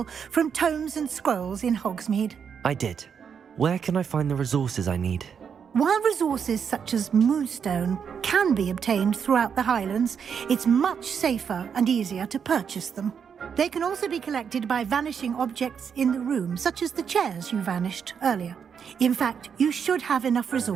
from tomes and scrolls in Hogsmeade. I did. Where can I find the resources I need? While resources such as moonstone can be obtained throughout the Highlands, it's much safer and easier to purchase them. They can also be collected by vanishing objects in the room, such as the chairs you vanished earlier. In fact, you should have enough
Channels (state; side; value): quieter; left; 7.1 dB